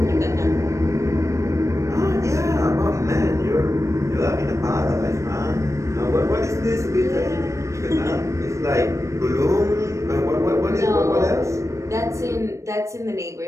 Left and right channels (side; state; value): left; late; 0.15 ms